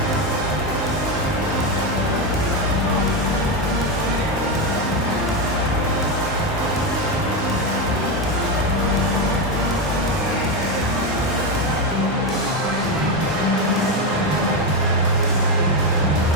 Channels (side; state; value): both; normal; correlation 0.10